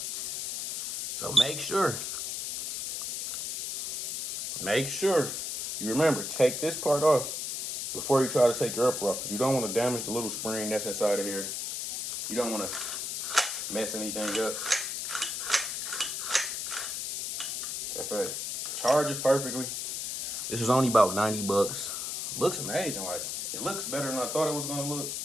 So make sure you remember, take this part off before you try to take your upper off, because you don't want to damage the little spring that's inside of here. You don't want to mess anything up. That's it. Charges perfectly. This was only about 90 bucks. Looks amazing. Like, it looks better than I thought it was gonna look.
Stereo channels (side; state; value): left; noise; hiss, 3 dB below the sound